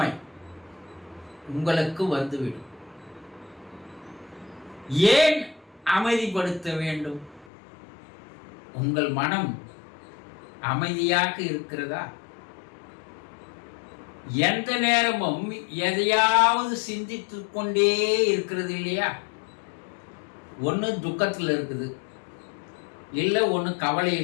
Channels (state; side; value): drops out; right; at 7.5 s